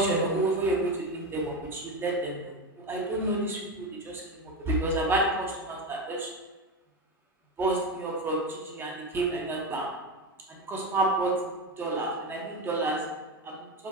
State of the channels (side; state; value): both; normal; correlation 0.17